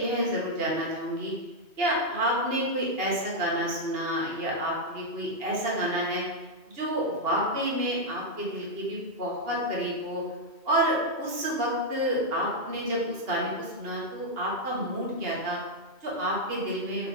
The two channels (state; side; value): late; left; 2.8 ms